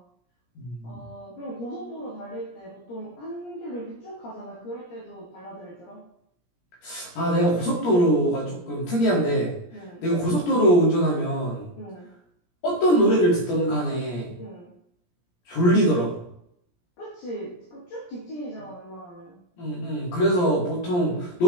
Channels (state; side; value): late; right; 17 ms